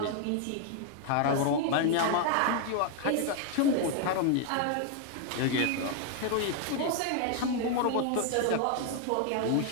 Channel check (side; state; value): both; different; correlation 0.00